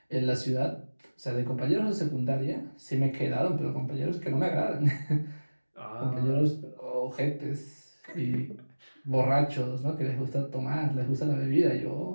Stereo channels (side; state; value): both; inverted; correlation -1.00